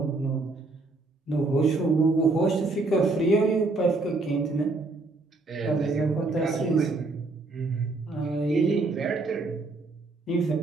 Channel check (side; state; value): left; quieter; 3.4 dB